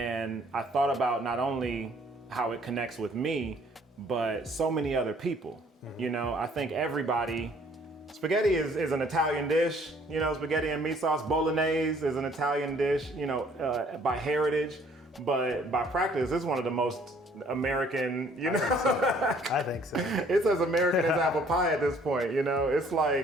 I thought about not only how it connects with me, but so many other people. I think everybody, spaghetti is an Italian dish, spaghetti and meat sauce. Bolognese is an Italian dish, by heritage, but by practice, it's one of the most American, I think so. It's as American as apple pie at this point, It's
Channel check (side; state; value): both; normal; correlation 0.59